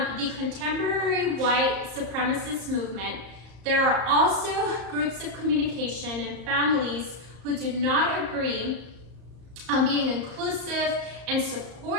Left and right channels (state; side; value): late; left; 34 ms